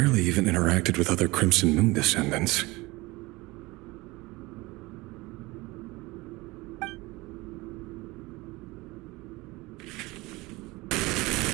even interacted with other Crimson Moon descendants.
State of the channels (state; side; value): quieter; left; 22.1 dB